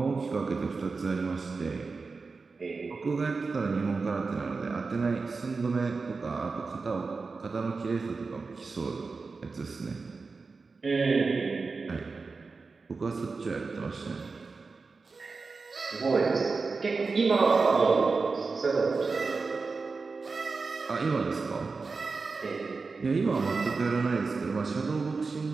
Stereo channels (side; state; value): left; quieter; 4.3 dB